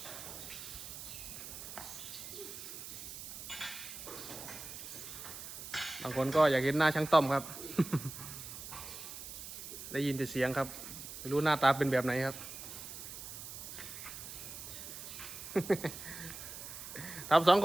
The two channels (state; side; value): noise; right; hiss, 10 dB below the sound